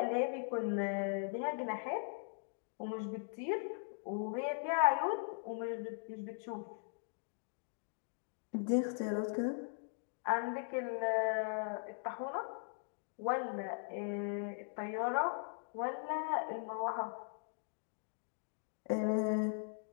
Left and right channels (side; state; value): right; silent; digital silence